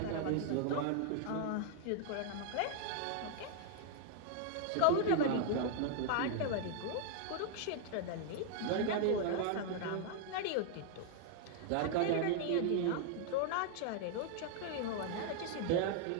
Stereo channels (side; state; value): both; different; correlation 0.00